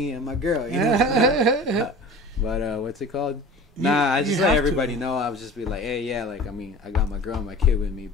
and my girl. But what's it called? Nah, I just let everybody know. I would just be like, hey, yeah, like I got my girl and my kid with me,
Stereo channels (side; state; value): both; normal; correlation 0.39